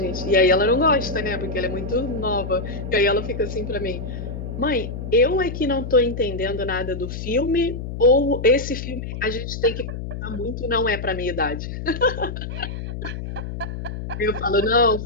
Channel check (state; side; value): noise; left; hum, 7 dB below the sound